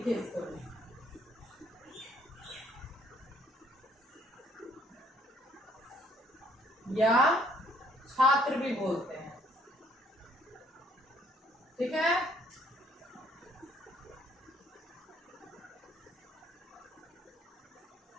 इसको, या छात्र भी बोलते हैं, ठीक है।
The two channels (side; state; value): both; normal; correlation 0.64